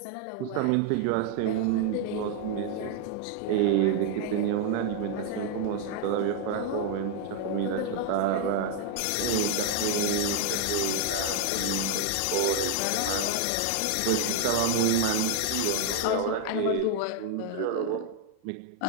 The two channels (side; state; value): both; different; correlation 0.00